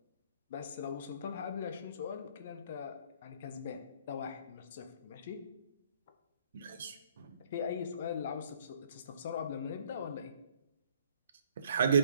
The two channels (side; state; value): both; inverted; correlation -0.61